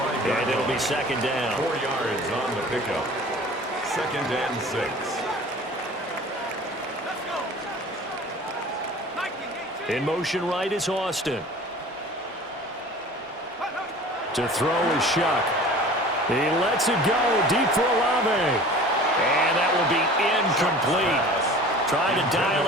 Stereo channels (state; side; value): normal; both; correlation 0.43